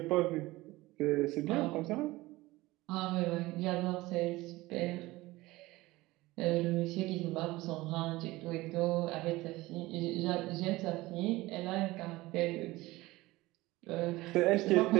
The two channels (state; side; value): quieter; left; 19.4 dB